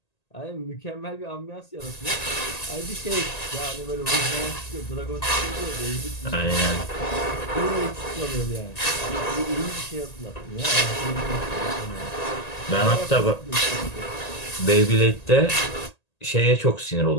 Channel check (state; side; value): late; right; 1.8 ms